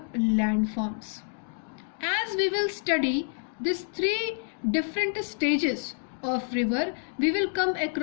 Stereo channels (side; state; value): right; silent; digital silence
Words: landforms. As we will study these three different stages of river, we will come